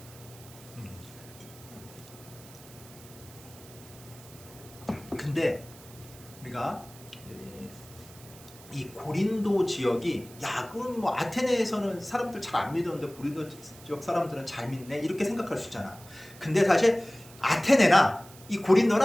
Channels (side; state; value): right; noise; hiss, 20 dB below the sound